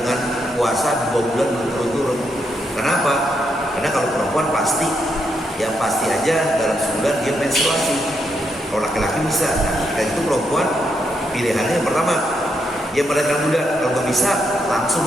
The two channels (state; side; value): normal; both; correlation 0.79